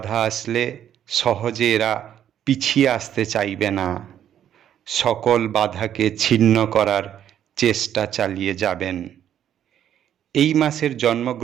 আসলে সহজে এরা পিছিয়ে আসতে চাইবে না। সকল বাধাকে ছিন্ন করার চেষ্টা চালিয়ে যাবেন। এই মাসের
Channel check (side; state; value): left; quieter; 10.2 dB